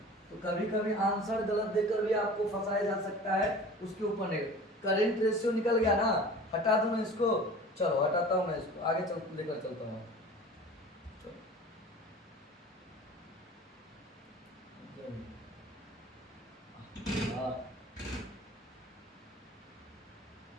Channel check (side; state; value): both; normal; correlation 0.41